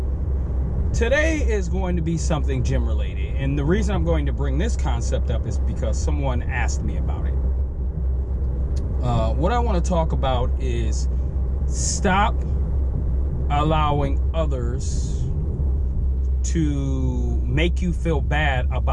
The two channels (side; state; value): both; identical; correlation 1.00